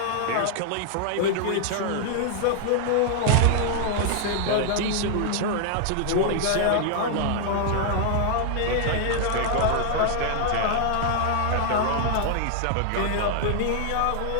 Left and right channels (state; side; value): different; both; correlation 0.00